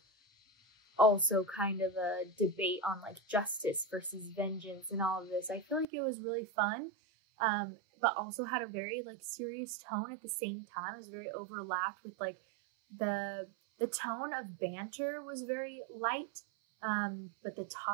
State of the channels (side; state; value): left; drops out; at 5.9 s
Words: also kind of a debate on like justice versus vengeance and all of this. I feel like it was really fun, but also had a very like serious tone at the same time. It was very overlapped with like the tone of banter was very light, but the